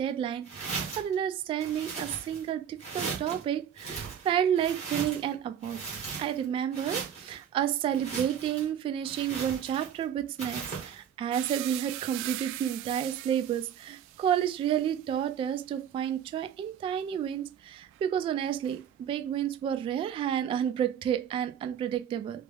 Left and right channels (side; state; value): left; quieter; 9.1 dB